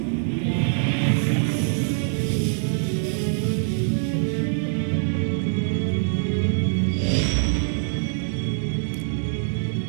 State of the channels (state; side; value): silent; left; digital silence